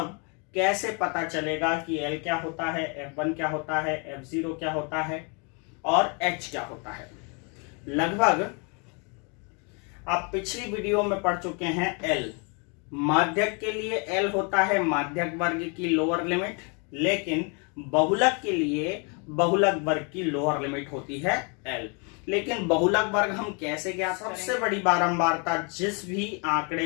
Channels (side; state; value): right; quieter; 34.5 dB